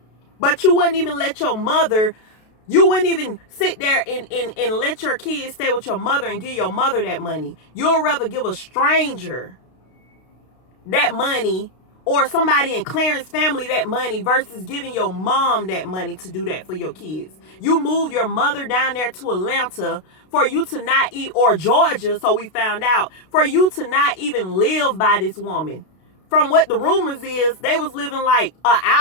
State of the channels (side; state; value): right; late; 32 ms